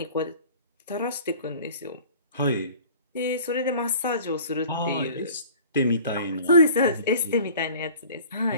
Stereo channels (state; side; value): inverted; both; correlation -0.46